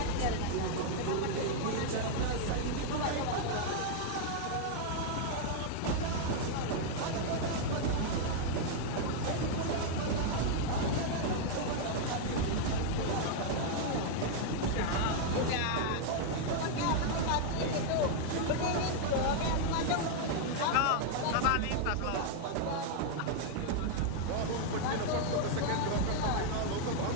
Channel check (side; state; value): both; different; correlation 0.00